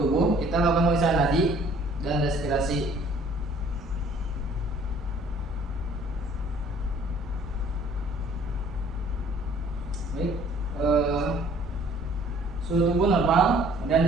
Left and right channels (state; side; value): normal; both; correlation 0.55